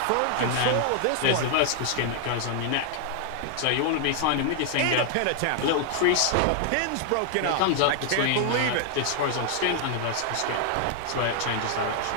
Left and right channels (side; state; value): both; different; correlation 0.00